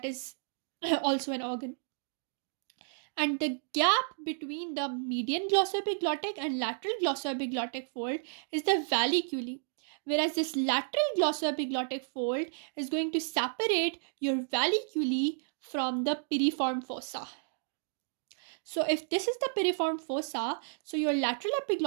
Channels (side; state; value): left; silent; digital silence